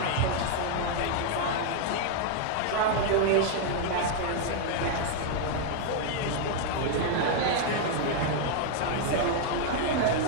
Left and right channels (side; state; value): both; different; correlation 0.00